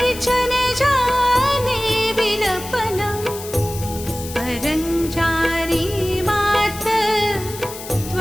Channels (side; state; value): left; noise; hiss, 12 dB below the sound